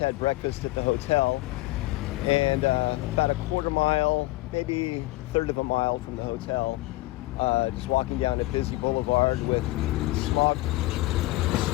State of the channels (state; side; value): quieter; right; 19.4 dB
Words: breakfast at the hotel, and about a quarter mile, maybe a third of a mile from the hotel, just walking down a busy boulevard with smog